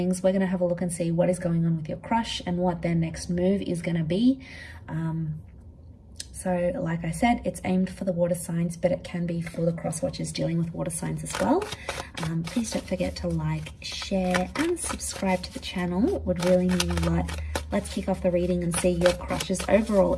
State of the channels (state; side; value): identical; both; correlation 1.00